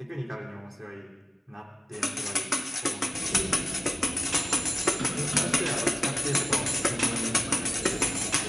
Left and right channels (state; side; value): normal; both; correlation 0.95